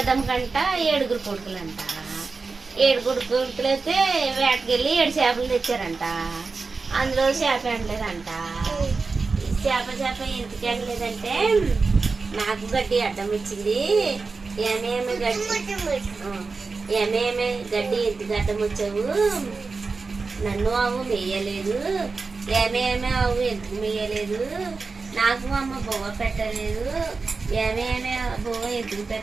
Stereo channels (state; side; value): quieter; left; 4.3 dB